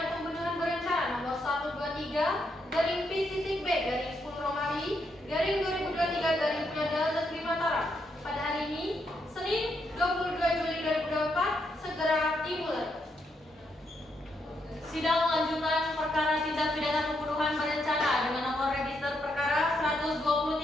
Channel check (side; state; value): both; normal; correlation 0.78